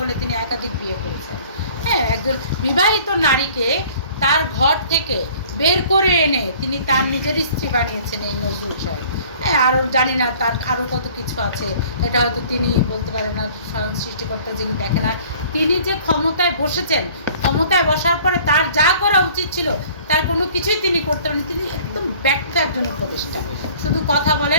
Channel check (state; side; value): inverted; both; correlation -0.51